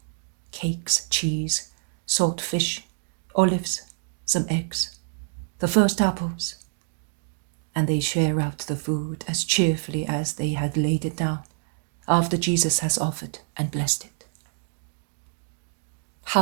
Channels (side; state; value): left; silent; digital silence